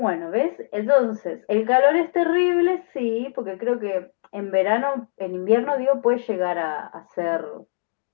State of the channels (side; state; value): right; silent; digital silence